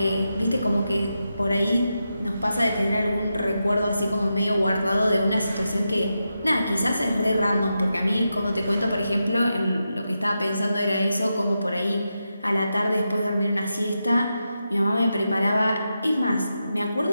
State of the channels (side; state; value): both; inverted; correlation -0.88